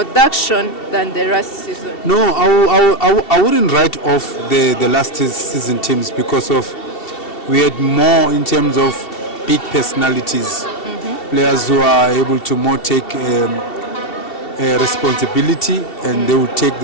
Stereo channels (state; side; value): late; right; 2.7 ms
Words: than the last season. No, I wouldn't write off the last season teams because we had more in terms of big personalities, players who are able to more take responsibility, and they will take